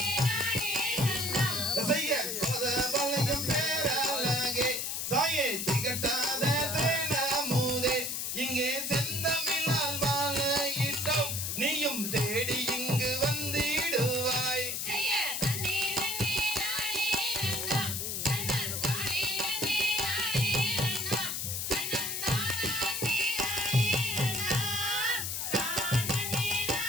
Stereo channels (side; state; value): left; noise; hiss, 2 dB below the sound